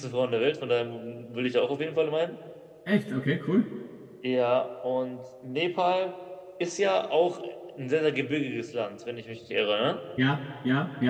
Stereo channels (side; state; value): both; identical; correlation 1.00